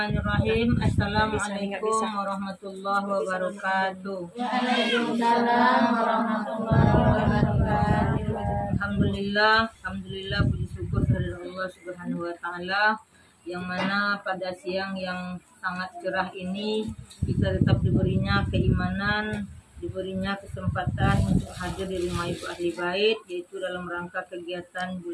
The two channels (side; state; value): both; identical; correlation 1.00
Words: Assalamualaikum warahmatullahi wabarakatuh. Waalaikumsalam warahmatullahi wabarakatuh. Alhamdulillah, puji syukur dari Allah Subhanahu wa taala, yang mana pada siang yang sangat cerah ini kita tetap diberinya keimanan, diberinya kesempatan untuk hadir di rumah Ibu Ahli Bait, yaitu dalam rangka kegiatan